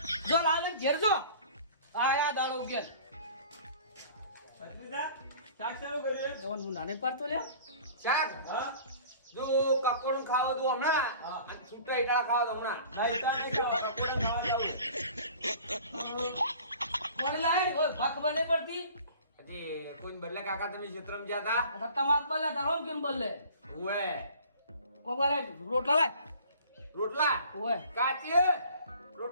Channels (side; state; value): both; inverted; correlation -0.46